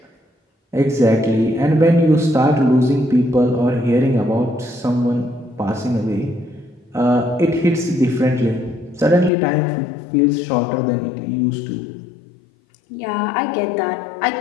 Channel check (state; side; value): drops out; right; at 9.3 s